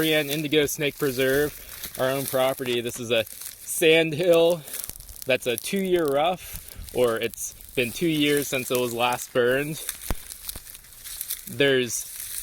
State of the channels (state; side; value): identical; both; correlation 1.00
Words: Indigo Snake Preserve, our own property. This is a sand hill that's a 2-year rough, or it's been 2 years since it was last burned. There's